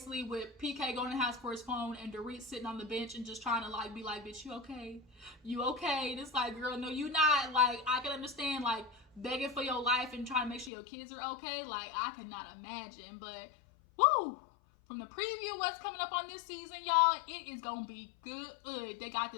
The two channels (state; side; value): drops out; right; at 10.7 s